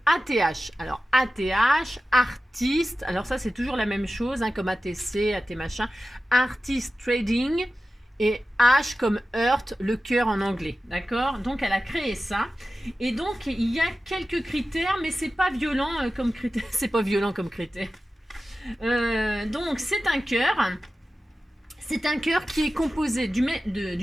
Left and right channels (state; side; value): normal; both; correlation 0.94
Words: ATH. Alors, ATH, artiste. Alors, ça, c'est toujours la même chose, hein, comme ATC, AT machin. Artist Trading. Et H comme Heart, le cœur en anglais. D'accord? Donc, elle a créé ça. Et donc, il y a quelques critères, mais c'est pas violent comme critère. C'est pas violent comme critère. Donc, c'est un cœur. C'est un cœur qui est composé du